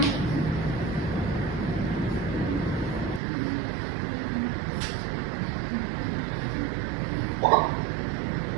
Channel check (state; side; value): drops out; left; at 3.2 s